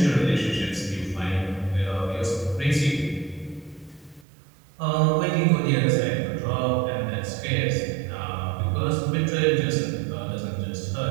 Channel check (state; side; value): drops out; left; at 4.2 s